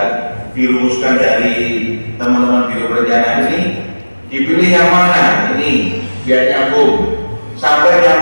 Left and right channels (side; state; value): both; inverted; correlation -1.00